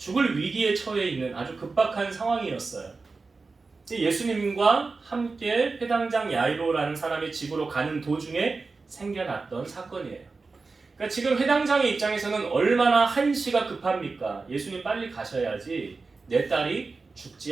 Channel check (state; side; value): quieter; left; 4.1 dB